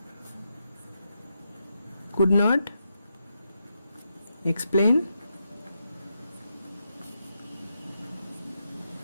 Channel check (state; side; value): inverted; both; correlation -0.84